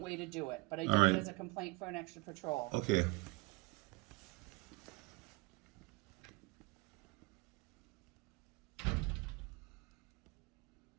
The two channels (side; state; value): left; quieter; 27.1 dB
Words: to do it. But I did All right. it as a complaint for an extra patrol. Okay.